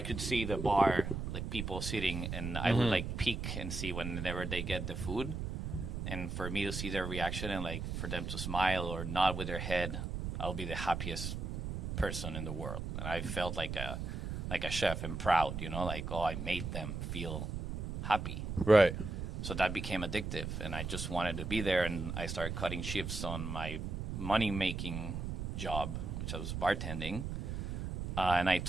see the bar, like people sitting, and I would like peek and see whenever they get the food. And for me to see their reaction and like for them to smile or nod with their head, I'll be the happiest person in the world. And I felt like a chef and proud, you know, like, oh, I made them feel happy. Right. So that became addictive, and I just wanted to be there. And I started cutting shifts on my money-making job, which I was bartending. And I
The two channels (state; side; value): noise; right; rumble, 4 dB below the sound